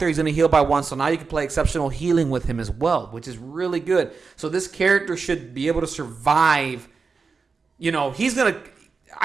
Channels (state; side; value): quieter; left; 4.8 dB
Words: He's going to heal by 1. So now you can play exceptional healing with him as well, which is really good. So this character should be able to survive. He's going to...